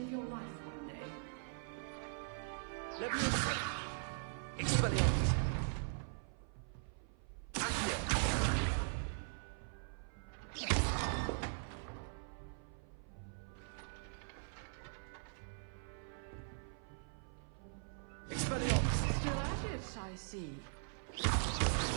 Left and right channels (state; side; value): silent; left; 50 dB below the other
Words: your life one day. Leviosa! Expelliarmus! Accio! Expelliarmus! Still at it, I see.